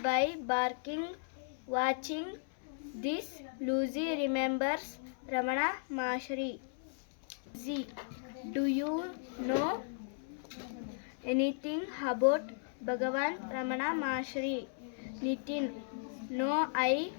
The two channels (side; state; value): right; silent; 54 dB below the other